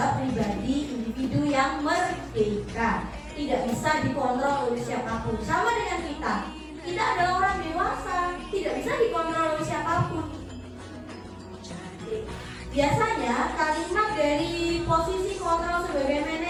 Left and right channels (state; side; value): identical; both; correlation 1.00